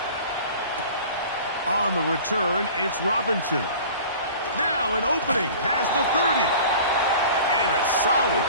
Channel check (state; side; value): inverted; both; correlation -0.42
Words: On the return, it's Robinson. Now an opening past the 30. And a solid